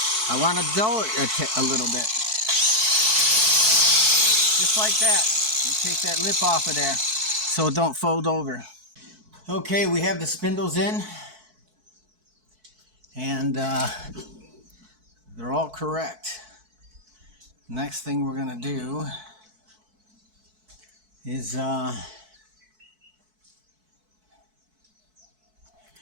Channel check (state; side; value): late; left; 4.6 ms